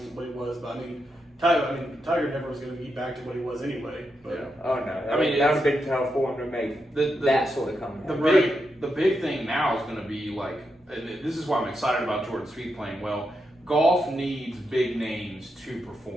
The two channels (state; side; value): normal; both; correlation 0.84